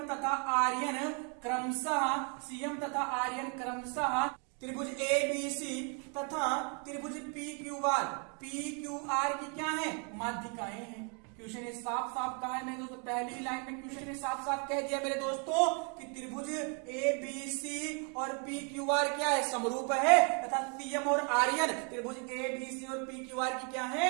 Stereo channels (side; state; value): left; quieter; 37.8 dB